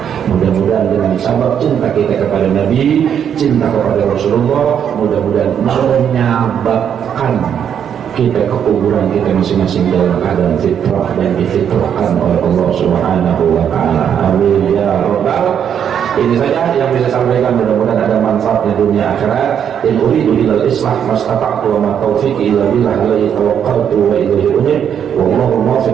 Mudah-mudahan dengan sabab cinta kita kepada Nabi, cinta kepada Rasulullah, mudah-mudahan menyebabkan kita ke kuburan kita masing-masing dalam keadaan fitrah dan difitrahkan oleh Allah Subhanahu wa taala. Amin ya rabbal Ini saja yang bisa sampaikan, mudah-mudahan ada manfaatnya dunia akhirat. In uridu ilal islah mastata'tu wa ma taufiqi illa billah alaihi tawakkaltu wa ilaihi unib. Wallahu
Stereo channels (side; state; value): left; quieter; 8.5 dB